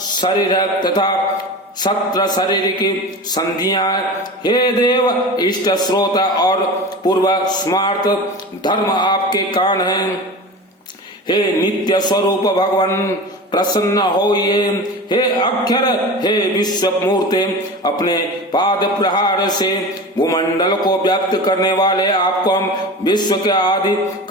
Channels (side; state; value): both; normal; correlation 0.32